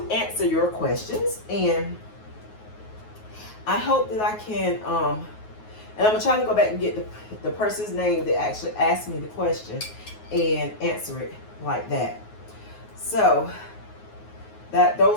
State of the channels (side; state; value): right; late; 9.4 ms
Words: answer your questions, and I hope that I can and I'm gonna try to go back and get the person's name that actually asked me the question and answer it like that. So